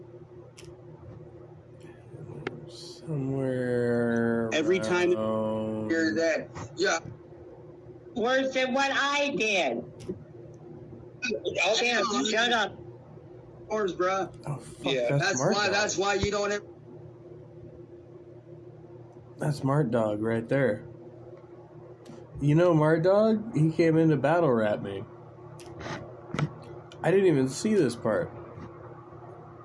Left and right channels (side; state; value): both; identical; correlation 1.00